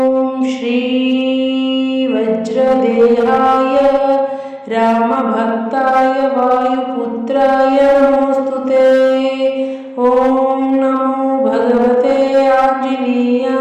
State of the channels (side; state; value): both; identical; correlation 1.00